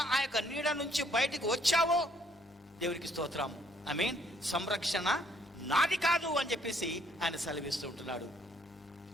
ఆ యొక్క నీడ నుంచి బయటకు వచ్చావో దేవునికి స్తోత్రం, ఐ మీన్ సంరక్షణ నాది కాదు అని చెప్పేసి ఆయన సెలవిస్తూ ఉంటున్నాడు.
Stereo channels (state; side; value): normal; both; correlation 0.65